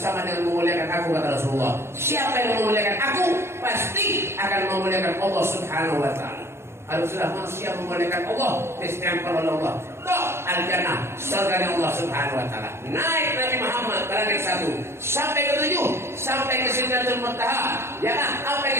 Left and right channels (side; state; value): left; late; 0.12 ms